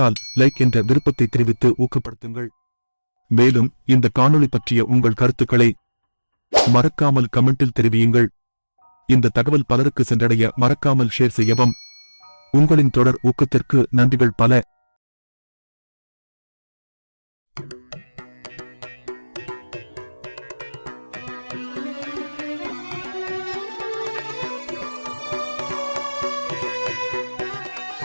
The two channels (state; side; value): inverted; both; correlation -1.00